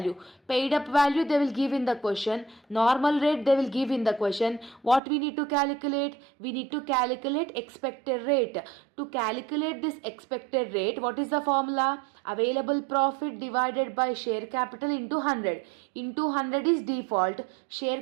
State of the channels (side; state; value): left; drops out; at 5.0 s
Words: Paid up value they will give in the question. Normal rate they will give in the question. What we need to calculate? We need to calculate expected expected rate. To calculate this expected rate, what is the formula? Available profit divided by share capital into 100. Into 100 is default. Share